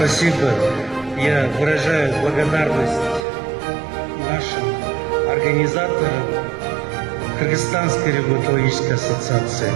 Я выражаю благодарность нашим организаторам Кыргызстанской ревматологической ассоциации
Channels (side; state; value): left; drops out; at 3.2 s